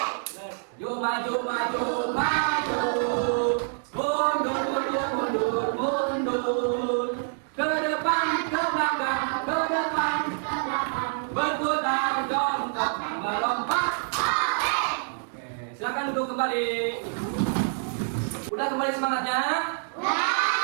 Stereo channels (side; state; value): left; silent; digital silence